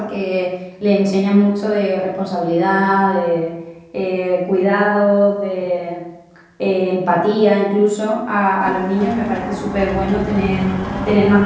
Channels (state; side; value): identical; both; correlation 1.00